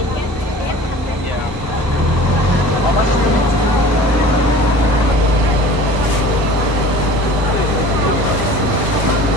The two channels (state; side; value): normal; both; correlation 0.42